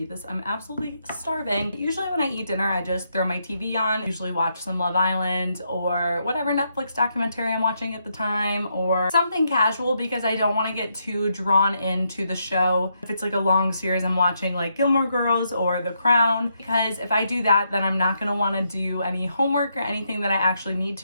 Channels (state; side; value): inverted; both; correlation -0.79